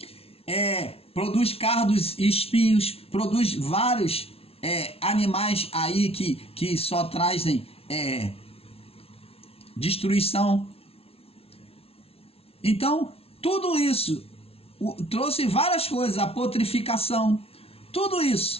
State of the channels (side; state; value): right; late; 0.28 ms